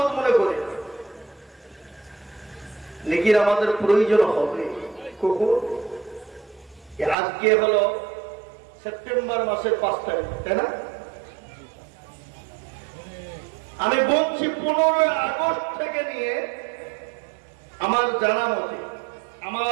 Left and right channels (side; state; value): left; drops out; at 7.2 s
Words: মনে করি। নেকির আমাদের প্রয়োজন হবে কখন? আজকে হলো সেপ্টেম্বর মাসের 5 তারিখ, তাই না? আমি বলছি 15 আগস্ট থেকে নিয়ে আমার জানা মতে,